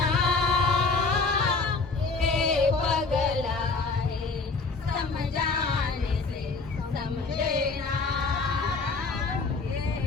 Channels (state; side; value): quieter; right; 3.9 dB